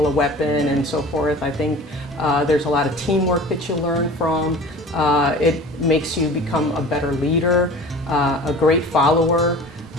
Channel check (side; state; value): both; normal; correlation 0.41